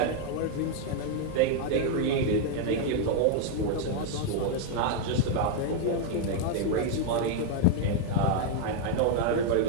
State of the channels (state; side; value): different; both; correlation 0.00